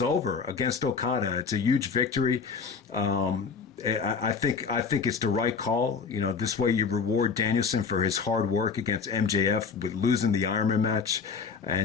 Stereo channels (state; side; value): quieter; right; 5.6 dB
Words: against Okada. It's a huge victory. I think it's the right call. This way you reward Danielson for his hard work against MJF with losing the Ironman match.